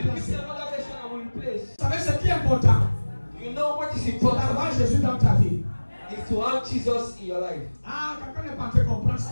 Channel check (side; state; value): both; inverted; correlation -1.00